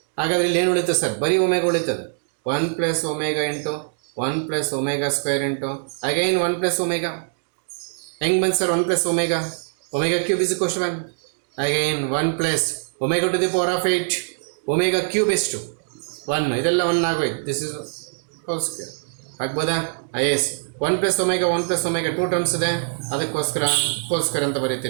ಹಾಗಾದ್ರೆ ಇಲ್ಲಿ ಏನು ಉಳಿತದೆ ಸರ್ ಬರೀ ಒಮೆಗಾ ಉಳಿತದೆ 1 plus omega into 1 plus omega square into again 1 plus omega ಹೆಂಗೆ ಬಂತು sir 1 plus omega cube is equal to 1 again 1 plus omega to the power of 8 omega cube ಎಷ್ಟು 1 ಇದೆಲ್ಲ 1 ಆಗೋಯ್ತು ದಿಸ್ ಇಸ್ ಹೋಲ್ ಸ್ಕ್ವೇರ್ ಆಗ್ಬೋದಾ yes 1 plus omega 2 terms ಇದೆ ಅದಕ್ಕೋಸ್ಕರ whole square ಅಂತ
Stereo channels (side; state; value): left; silent; digital silence